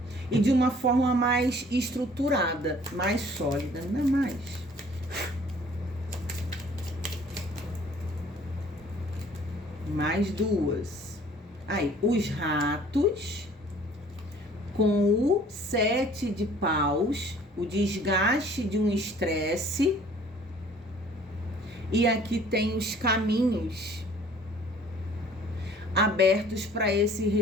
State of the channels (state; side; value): normal; both; correlation 0.54